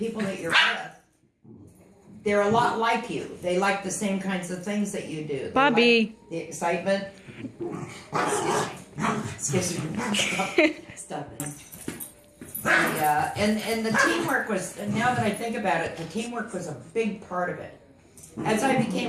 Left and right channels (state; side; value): identical; both; correlation 1.00